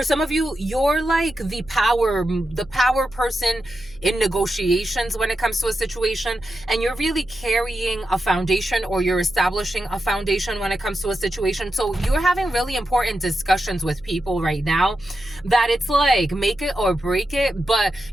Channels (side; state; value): left; noise; hum, 23 dB below the sound